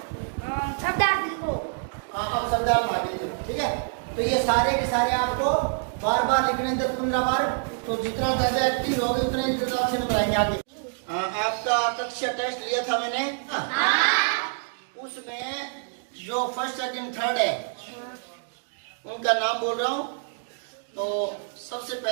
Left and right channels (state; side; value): silent; left; digital silence